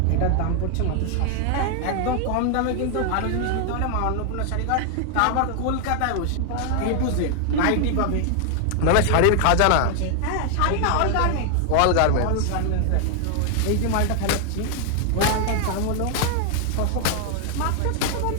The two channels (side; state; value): both; different; correlation 0.00